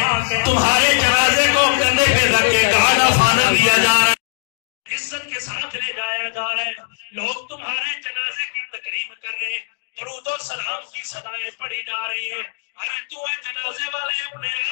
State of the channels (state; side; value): silent; right; digital silence